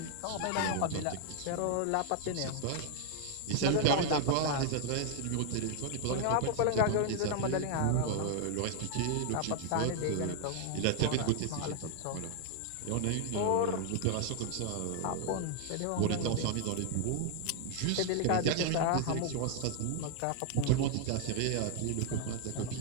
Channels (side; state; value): both; different; correlation 0.00